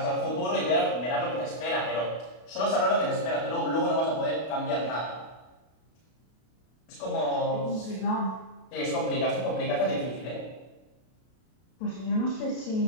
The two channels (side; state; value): right; late; 32 ms